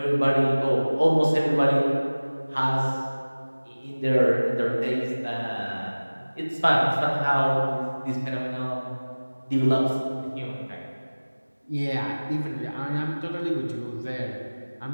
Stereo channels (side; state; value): both; inverted; correlation -1.00